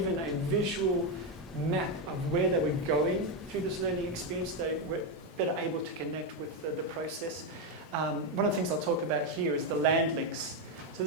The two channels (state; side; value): normal; both; correlation 0.06